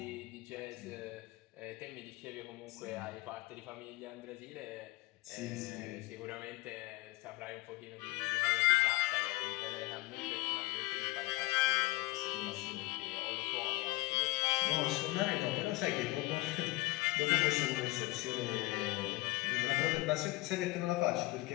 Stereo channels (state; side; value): quieter; right; 21.2 dB